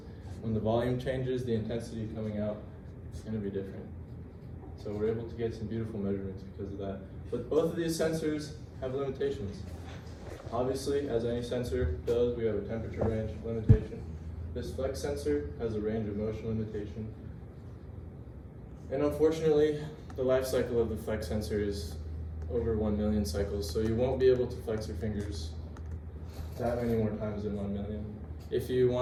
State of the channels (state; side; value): identical; both; correlation 1.00